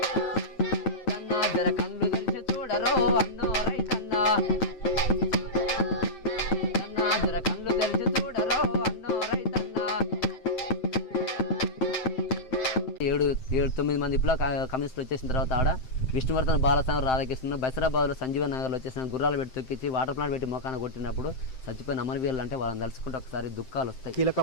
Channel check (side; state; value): right; late; 7.7 ms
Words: జర కళ్ళు తెలిసి చూడరో అన్నో రైతన్నా అన్నా జర కళ్ళు తెలిసి చూడరో అన్నో రైతన్నా. 7-9 మంది ఇప్పుడు కమ్యూనిస్టులు వచ్చేసిన తర్వాత ఆడ విష్ణువర్ధన్ బాలస్వామి రాధాకృష్ణ బసిరాబాద్లో సంజీవ నగర్లో వచ్చేసిన గుర్రాలు పెట్టి తొక్కించి వాటర్ ప్లాంట్ పెట్టి మొఖాన కొట్టినప్పుడు చచ్చిపోయిన అమరవీరులు అంటే వాళ్ళని తలుచుకుంటే ఒకసారి దుఃఖాలు వస్తాయి. కీలక